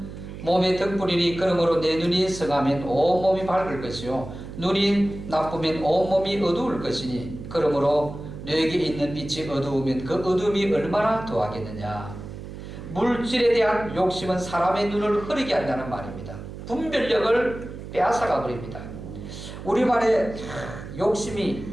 몸의 등불이니 그러므로 내 눈이 성하면 온몸이 밝을 것이요 눈이 나쁘면 온몸이 어두울 것이니 그러므로 너에게 있는 빛이 어두우면 그 어둠이 얼마나 더하겠느냐. 물질에 대한 욕심은 사람의 눈을 흐리게 한다는 말입니다. 분별력을 빼앗아가 버립니다. 우리말에 욕심이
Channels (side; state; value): right; noise; hum, 11 dB below the sound